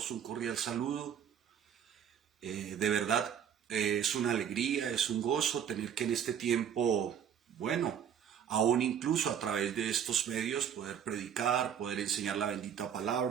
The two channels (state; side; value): quieter; left; 8.6 dB